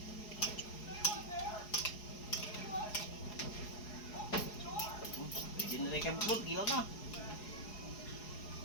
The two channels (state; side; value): late; right; 4.8 ms